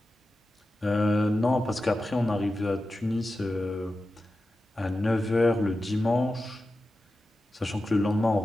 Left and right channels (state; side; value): normal; both; correlation 0.92